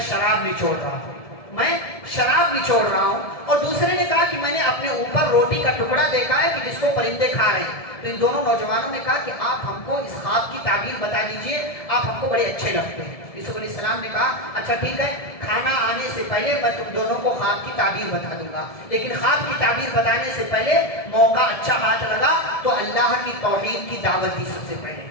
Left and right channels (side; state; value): right; late; 1.7 ms